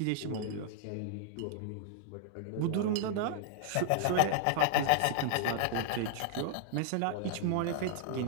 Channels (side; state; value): both; different; correlation -0.01